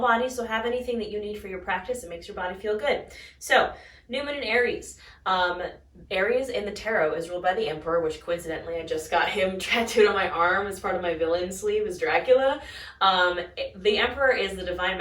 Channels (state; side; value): identical; both; correlation 1.00